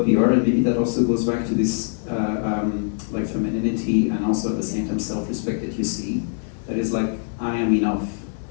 we are, and maybe that also goes back to this like femininity, and also at the same time self-respect that you see. That is like, I am enough.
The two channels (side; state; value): right; silent; digital silence